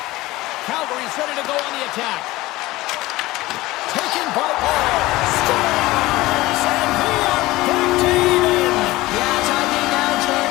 Calgary's ready to go on the attack. Taken by Paul. Scores! And we are back to even. Yeah, talking now,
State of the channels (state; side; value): quieter; right; 18.8 dB